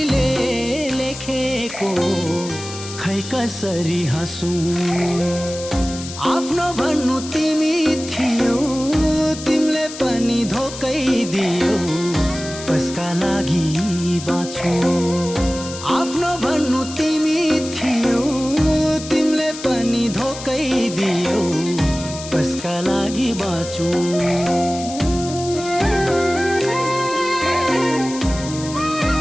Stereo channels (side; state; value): left; noise; hiss, 12 dB below the sound